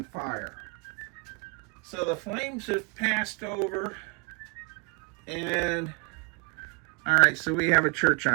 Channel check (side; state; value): left; quieter; 31.9 dB